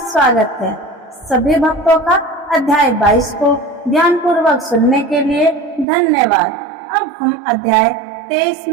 स्वागत है। सभी भक्तों का अध्याय 22 को ध्यान पूर्वक सुनने के लिए धन्यवाद। अब हम अध्याय 23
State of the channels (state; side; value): drops out; left; at 5.9 s